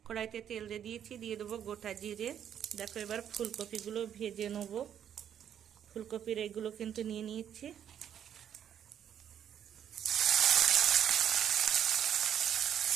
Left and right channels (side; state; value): left; quieter; 9.4 dB